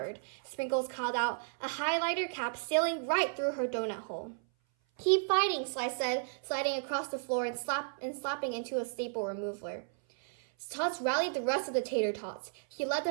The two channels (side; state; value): left; silent; 55 dB below the other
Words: Sprinkles called out, a highlighter cap sailing right through her donut hole. Keep fighting, Slice said, sliding across the floor and slapping into a staple remover. Totz rallied the rest of the tater tots. He led